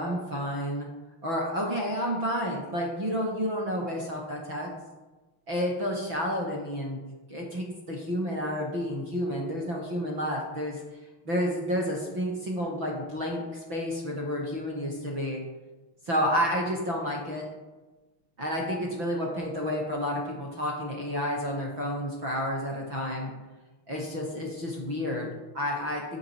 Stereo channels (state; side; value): late; left; 6.0 ms